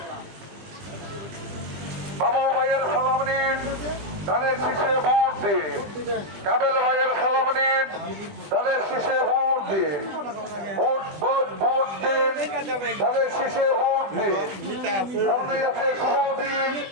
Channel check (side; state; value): left; late; 20 ms